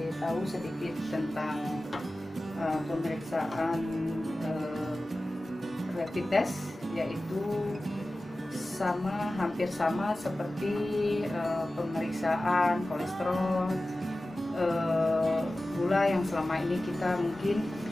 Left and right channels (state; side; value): normal; both; correlation 0.95